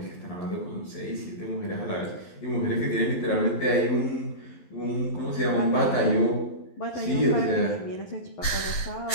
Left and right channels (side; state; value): right; late; 12 ms